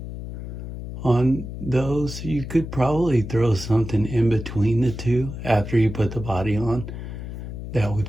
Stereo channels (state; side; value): noise; left; hum, 8 dB below the sound